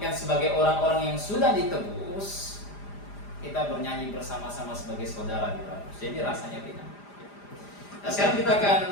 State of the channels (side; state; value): right; late; 4.9 ms